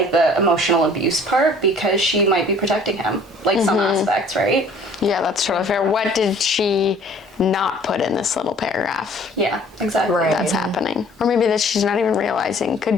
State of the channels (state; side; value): normal; both; correlation 0.53